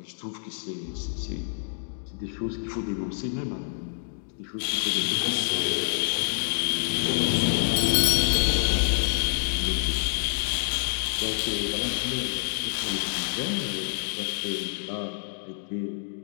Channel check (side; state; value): right; silent; digital silence